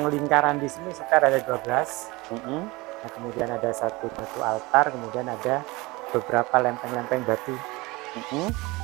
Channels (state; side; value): quieter; left; 23.1 dB